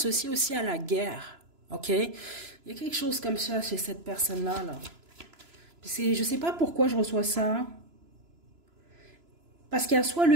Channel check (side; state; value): left; late; 3.0 ms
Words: aussi à la guerre. OK? Il y a quelque chose comme ça chez cette personne-là. Là. Je sais pas pourquoi je reçois ça. Parce qu'il y a soit